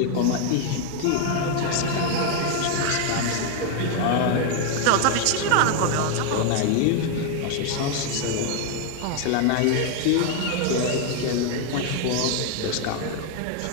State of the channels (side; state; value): both; different; correlation 0.00